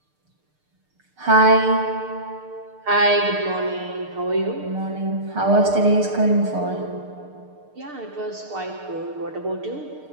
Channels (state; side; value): late; left; 6.6 ms